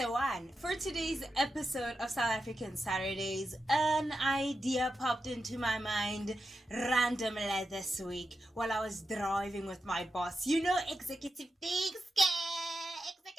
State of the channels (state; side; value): normal; both; correlation 0.89